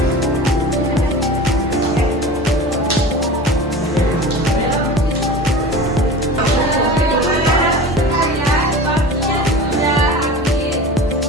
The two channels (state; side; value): normal; both; correlation 0.35